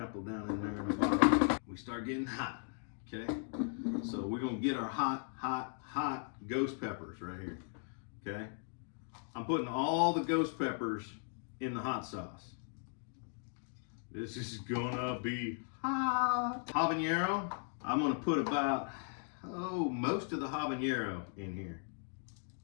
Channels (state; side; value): silent; right; 53 dB below the other